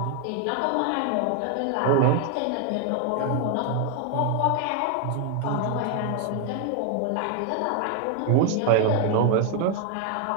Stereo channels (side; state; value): both; different; correlation 0.00